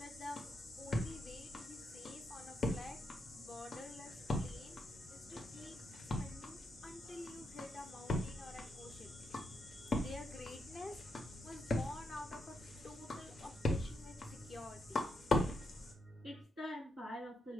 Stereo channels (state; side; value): normal; both; correlation 0.82